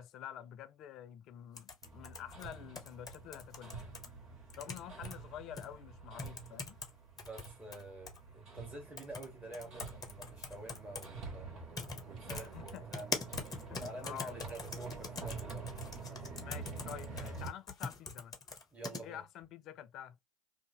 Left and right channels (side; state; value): both; normal; correlation 0.45